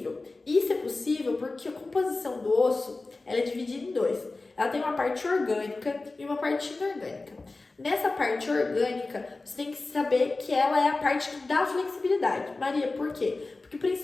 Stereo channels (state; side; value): quieter; right; 3.4 dB